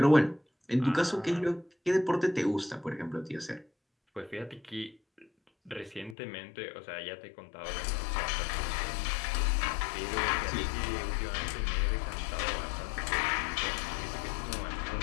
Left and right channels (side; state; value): right; drops out; at 6.2 s